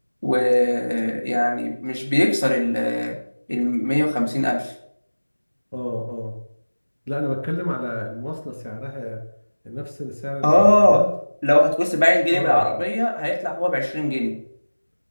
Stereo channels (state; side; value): inverted; both; correlation -1.00